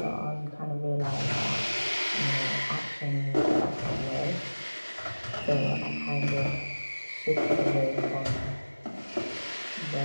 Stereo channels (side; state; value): both; inverted; correlation -1.00